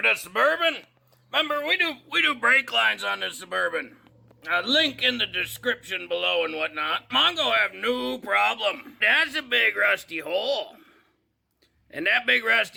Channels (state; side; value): identical; both; correlation 1.00